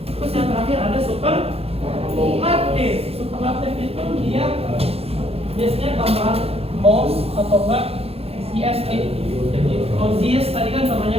Terus yang terakhir ada superlatif. Superlatif itu dia biasanya tambahan most atau enggak EST. Jadi obvious tadi kan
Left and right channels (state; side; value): late; left; 0.29 ms